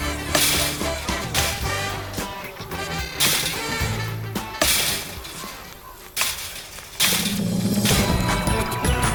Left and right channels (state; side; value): identical; both; correlation 1.00